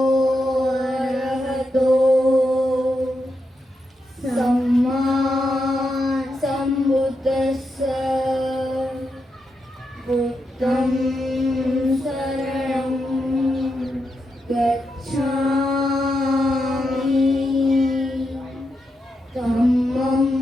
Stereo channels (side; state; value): both; normal; correlation 0.85